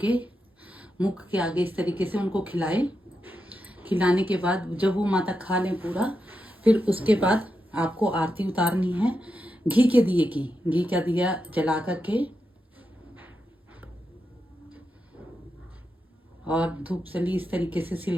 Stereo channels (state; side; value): normal; both; correlation 0.87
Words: के मुख के आगे इस तरीके से उनको खिलाएं। खिलाने के बाद जब वो माता खा लें पूरा, फिर उसके बाद आपको आरती उतारनी है घी के दिए की। घी का दिया जला करके और धूप सली इस तरीके से